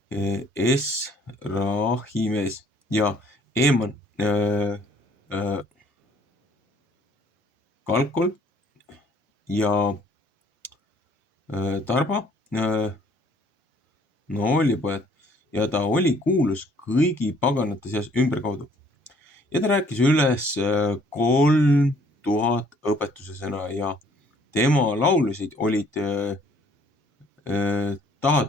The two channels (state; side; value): normal; both; correlation 0.60